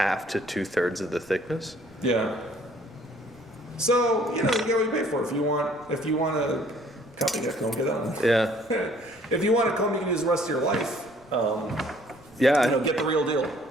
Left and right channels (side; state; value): right; noise; rumble, 29 dB below the sound